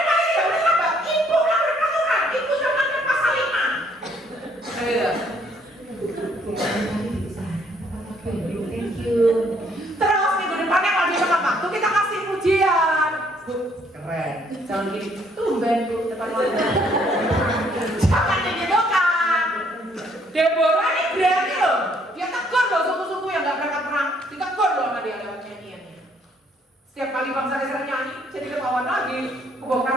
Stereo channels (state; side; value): normal; both; correlation 0.66